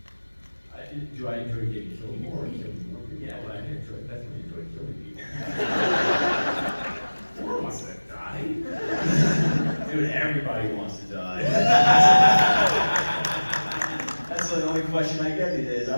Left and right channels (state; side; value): inverted; both; correlation -1.00